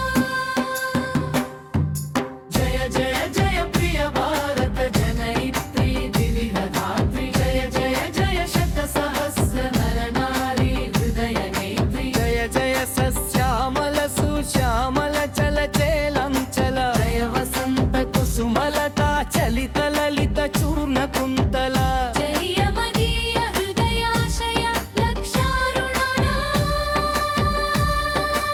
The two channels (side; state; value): both; identical; correlation 1.00